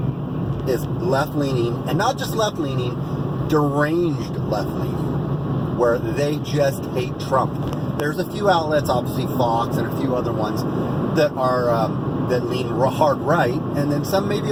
is left-leaning, and not just left-leaning, deranged left-leaning, where they just hate Trump. There's a few outlets, obviously Fox and a few other ones, that are that lean hard right, and then some maybe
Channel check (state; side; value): identical; both; correlation 1.00